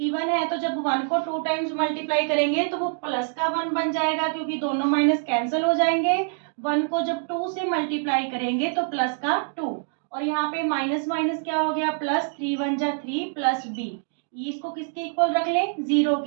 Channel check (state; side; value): silent; left; 62 dB below the other